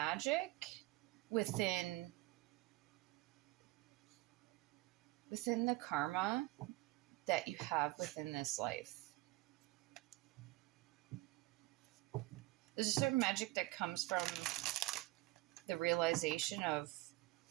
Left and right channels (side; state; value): left; quieter; 19.7 dB